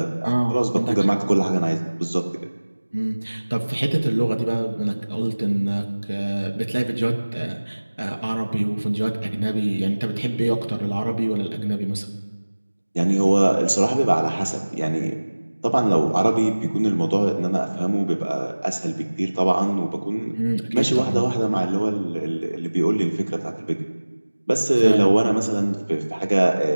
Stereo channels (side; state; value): both; inverted; correlation -1.00